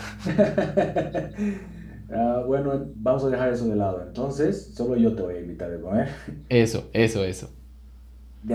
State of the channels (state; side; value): identical; both; correlation 1.00